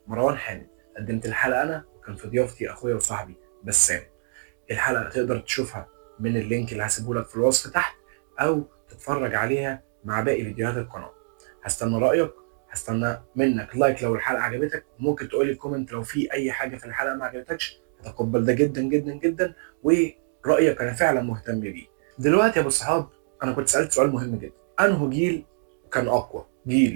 مروان حامد. قدمت الحلقه انا وكان في ضيافتي اخويا وصاحبي بسام. الحلقه تقدر تشوفها من اللينك اللي هسيبه لك في الوصف تحت، او تتفرج عليها مع باقي فيديوهات القناه. هستنى رايك، هستنى منك لايك لو الحلقه عجبتك، وممكن تقولي كومنت لو في اي حاجه في الحلقه ما عجبتكش. هتقبل ده جدا جدا جدا، ورايك انا فعلا مهتم بيه. دلوقتي يا ابو الصحاب، انا كنت سالت سؤال مهم جدا: انه جيل كان اقوى؟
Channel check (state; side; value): silent; left; digital silence